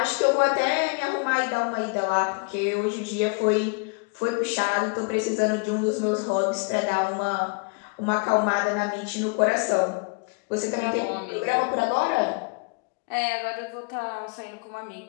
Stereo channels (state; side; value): quieter; right; 33.6 dB